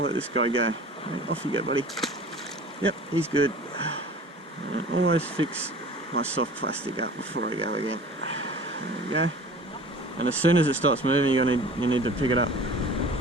let this guy go. Okay, off you go, buddy. Yep, he's good. And always fix my soft plastic up before I go again. There we go. And as soon as it starts moving, you need to pick it up.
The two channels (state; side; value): normal; both; correlation 0.43